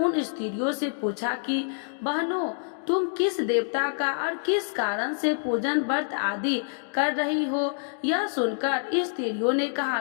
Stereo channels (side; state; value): right; silent; digital silence